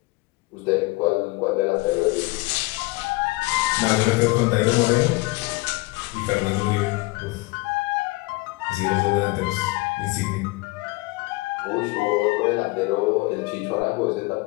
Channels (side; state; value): right; quieter; 23.8 dB